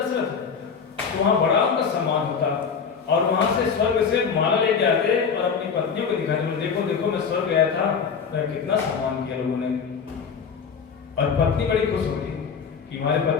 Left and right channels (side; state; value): right; quieter; 6.2 dB